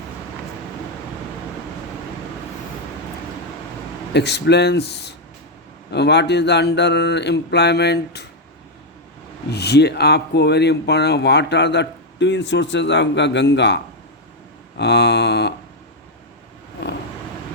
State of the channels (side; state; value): both; normal; correlation 0.01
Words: explains what is the under employment, ये आपको very important. What are the twin sources of Ganga,